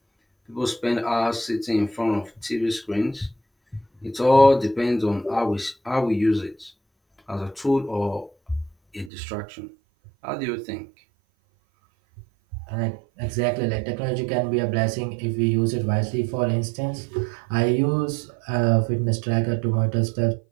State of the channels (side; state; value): left; drops out; at 9.1 s